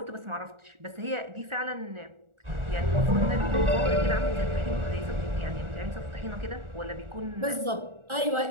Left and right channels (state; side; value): late; left; 1.4 ms